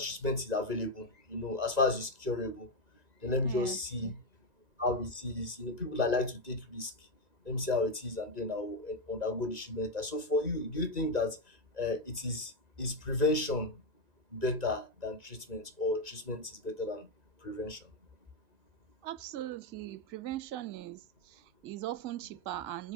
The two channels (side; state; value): left; late; 1.9 ms